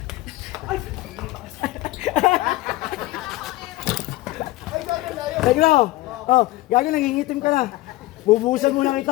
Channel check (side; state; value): right; quieter; 18.2 dB